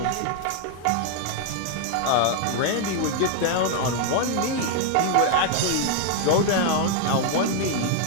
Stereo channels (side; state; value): both; different; correlation 0.00